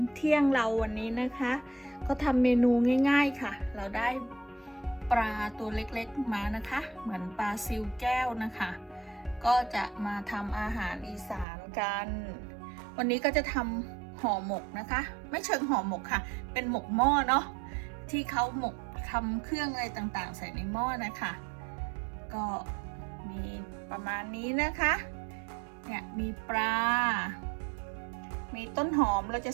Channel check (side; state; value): left; drops out; at 11.5 s